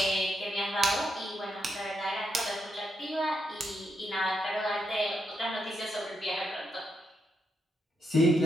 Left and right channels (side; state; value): both; normal; correlation 0.81